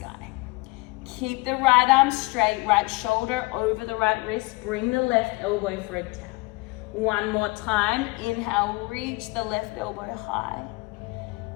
Keep the right arm straight, right shoulder over the right wrist. Bring the left elbow for a tap. One more time. Inhale, reach the left elbow high.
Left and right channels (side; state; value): right; quieter; 24.8 dB